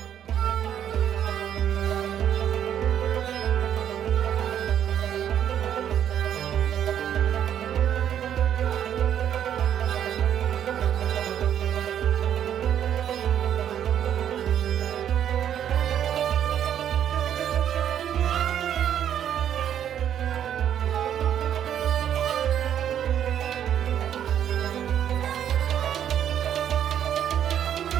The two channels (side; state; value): left; quieter; 9.8 dB